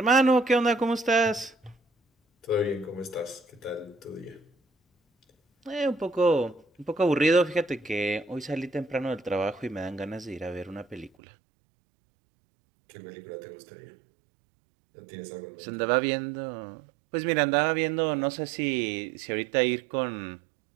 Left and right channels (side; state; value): left; drops out; at 11.1 s